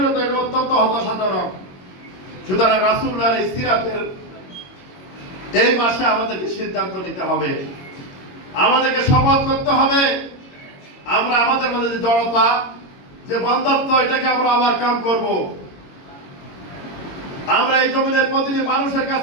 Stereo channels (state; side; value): late; right; 22 ms